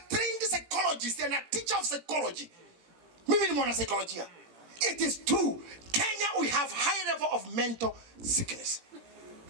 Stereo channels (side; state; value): left; late; 17 ms